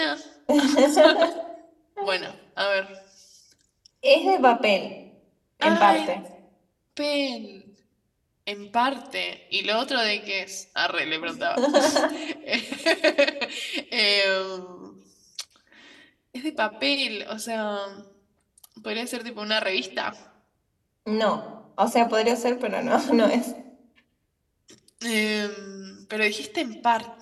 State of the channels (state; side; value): identical; both; correlation 1.00